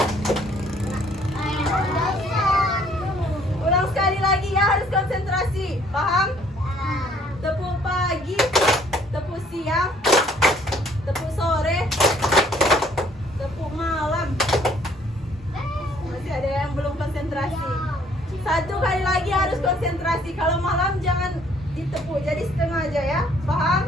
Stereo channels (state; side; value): normal; both; correlation 0.61